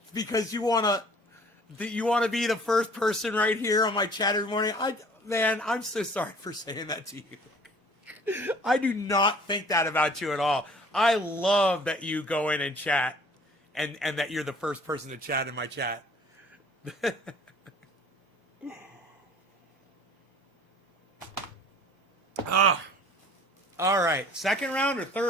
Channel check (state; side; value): normal; both; correlation 0.51